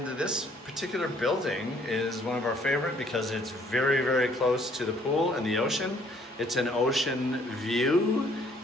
this particular building is one of our favorite because it's very, very close to the pool and the ocean. It's an ocean view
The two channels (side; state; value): both; normal; correlation 0.62